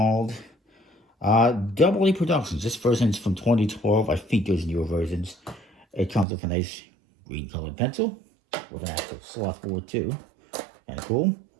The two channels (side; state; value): left; drops out; at 6.2 s